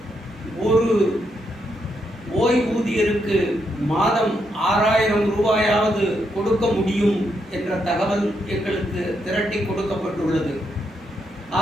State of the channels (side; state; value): both; normal; correlation 0.79